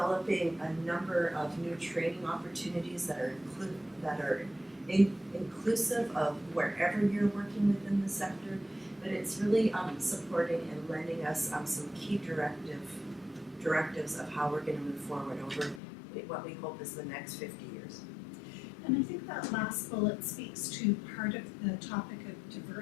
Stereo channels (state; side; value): drops out; right; at 15.8 s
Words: a number of new training opportunities that are inclusive of wherever you're working within the sector, but it's really supporting and lending us some key directives of how we're going to move forward over what we hope is the next 50 years. And I think that last bullet speaks to part of the topic of